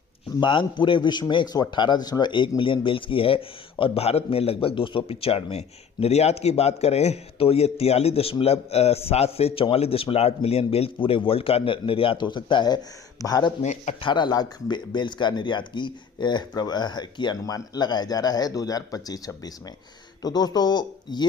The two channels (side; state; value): right; quieter; 6.9 dB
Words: मांग पूरे विश्व में 118.1 मिलियन बेल्स की है और भारत में लगभग 295। निर्यात की बात करें तो ये 43.7 से 44.8 मिलियन बेल्स पूरे वर्ल्ड का निर्यात हो सकता है। भारत में 18 लाख बेल्स का निर्यात की अनुमान लगाया जा रहा है 2025-26 में। तो दोस्तों